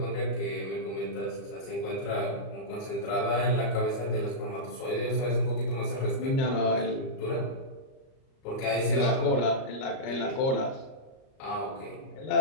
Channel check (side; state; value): right; late; 38 ms